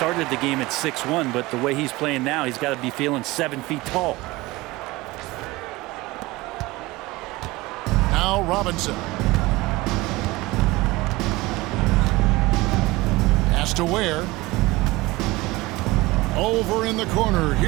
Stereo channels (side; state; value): left; quieter; 20.5 dB